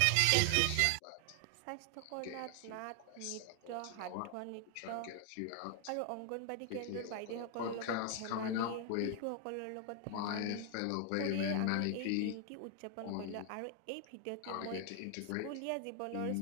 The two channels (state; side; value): different; both; correlation 0.00